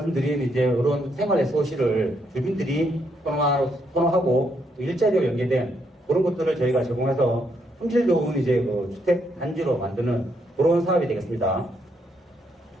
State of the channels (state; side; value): normal; both; correlation 0.75